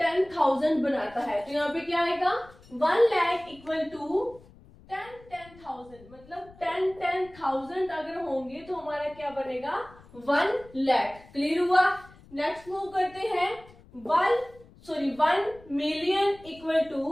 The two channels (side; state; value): left; noise; rumble, 23 dB below the sound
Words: बनाता है? तो यहाँ पे क्या आएगा 1 लाख इक्वल टू 10,000, मतलब 10,000 अगर होंगे तो हमारा क्या बनेगा 1 लाख। क्लियर हुआ? नेक्स्ट मूव करते हैं 1 मिलियन इक्वल